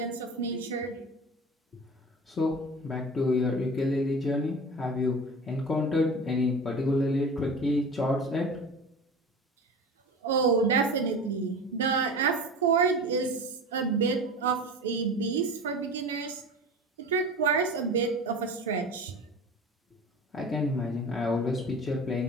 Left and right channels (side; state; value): both; normal; correlation 0.33